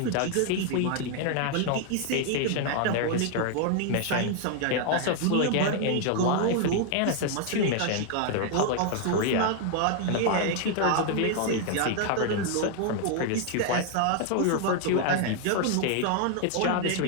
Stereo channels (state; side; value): different; both; correlation 0.00